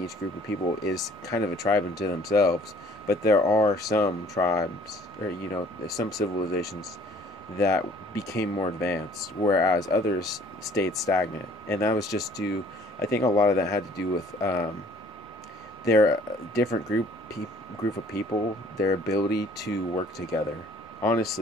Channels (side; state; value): both; normal; correlation 0.56